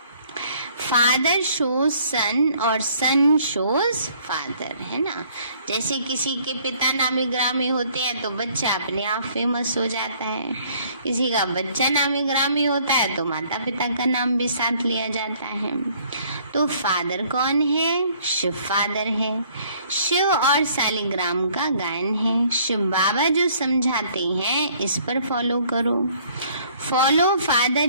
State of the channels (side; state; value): both; inverted; correlation -0.60